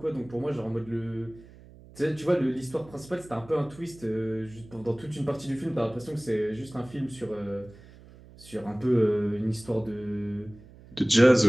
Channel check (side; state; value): right; noise; hum, 21 dB below the sound